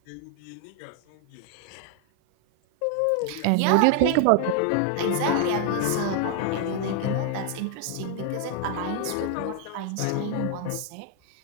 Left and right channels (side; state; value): both; different; correlation 0.00